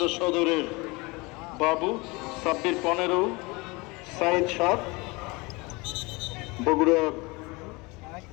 সদরের বাবু, সাব্বির 15, সাইদ 7। বগুড়া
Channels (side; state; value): right; quieter; 25.5 dB